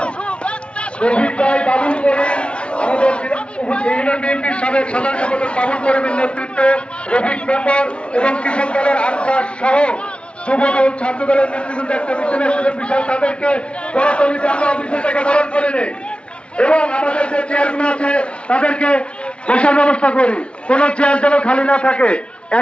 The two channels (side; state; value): right; late; 0.059 ms